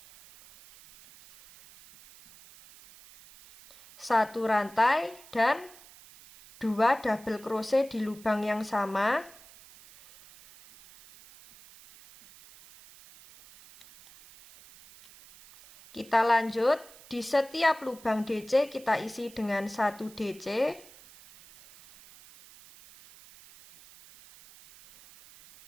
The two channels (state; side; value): noise; right; hiss, 22 dB below the sound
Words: 1 rantai dan 2 double crochet di lubang yang sama. Kita lanjut, di setiap lubang DC kita isi dengan 1 DC.